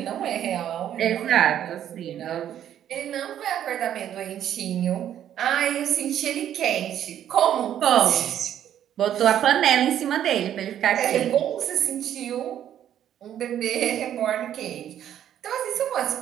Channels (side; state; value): left; quieter; 10.5 dB